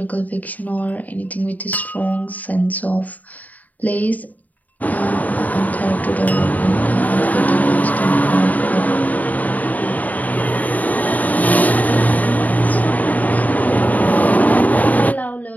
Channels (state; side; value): late; right; 0.076 ms